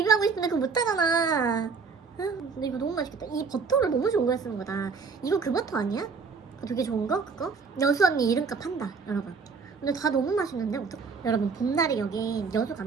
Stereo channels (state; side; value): quieter; left; 5.0 dB